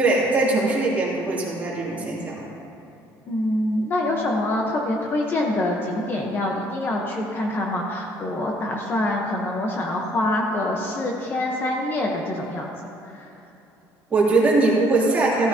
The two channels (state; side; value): normal; both; correlation 0.63